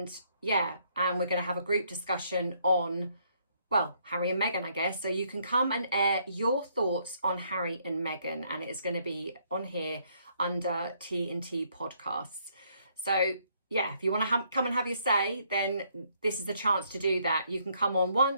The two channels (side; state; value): both; inverted; correlation -0.70